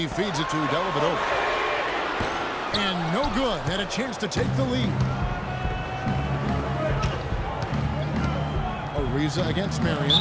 feeds it to Dellavedova. And no good. Had a chance to take the lead. Ariza against Marion.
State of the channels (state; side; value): identical; both; correlation 1.00